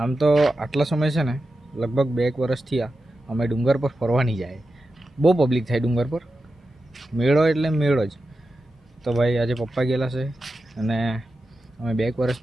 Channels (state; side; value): normal; both; correlation 0.91